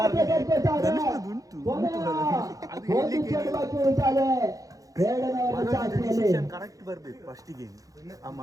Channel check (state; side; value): late; left; 0.17 ms